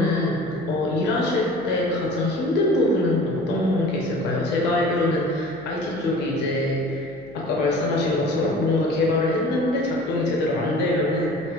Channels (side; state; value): left; noise; hum, 27 dB below the sound